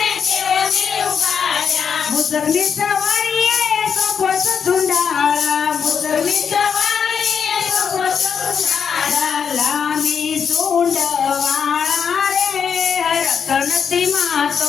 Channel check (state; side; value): quieter; right; 6.9 dB